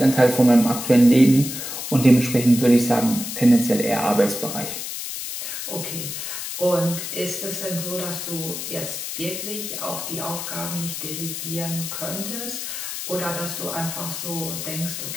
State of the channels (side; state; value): left; noise; hiss, 6 dB below the sound